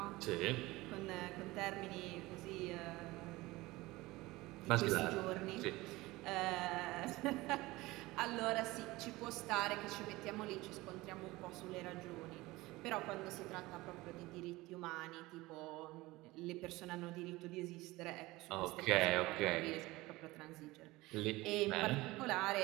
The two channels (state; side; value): quieter; left; 20.1 dB